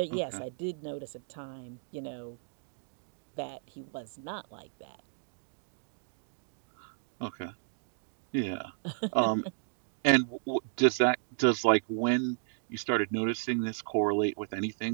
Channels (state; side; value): silent; left; digital silence